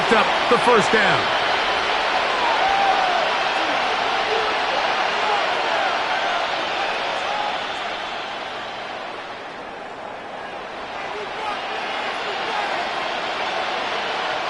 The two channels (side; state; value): both; identical; correlation 1.00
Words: up the 1st down.